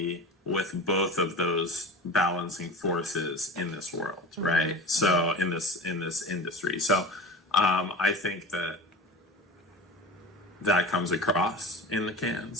with both of those balancing forces in this world, right? So in this industry. So I think that comes across in the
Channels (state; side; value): normal; both; correlation 0.33